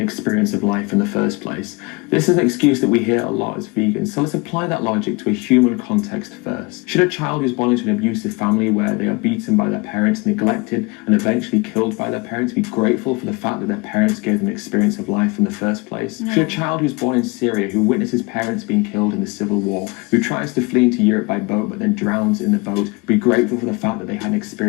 of life in the first place. This is an excuse that we hear a lot as vegans, so let's apply that logic to a human context first. Should a child who's born into an abusive family where they are beaten by their parents, neglected, and eventually killed by their parents be grateful for the fact that their parents gave them an experience of life in the first place? No. Should a child who's born in Syria, who witnesses parents being killed in the civil war, who tries to flee into Europe by boat but then drowns in the boat, be grateful for the fact that they had an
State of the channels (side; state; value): right; quieter; 26.9 dB